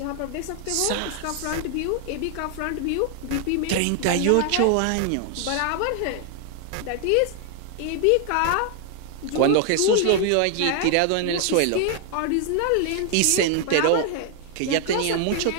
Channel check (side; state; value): both; different; correlation 0.00